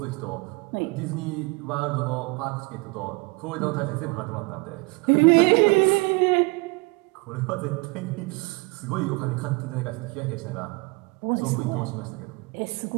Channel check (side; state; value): left; quieter; 27.3 dB